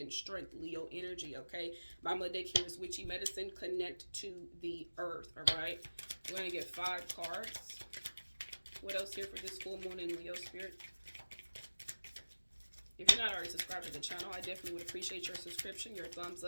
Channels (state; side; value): inverted; both; correlation -1.00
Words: strength, Leo energy, okay? Bottom of the deck here is witchy medicine. Connect to the earth, all right? We're going to get 5 cards. What else here for this full moon in Leo spirit? If you're not already subscribed to the channel, I definitely would appreciate your subscription, your thumbs